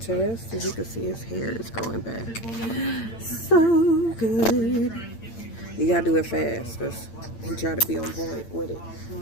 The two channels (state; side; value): late; right; 8.9 ms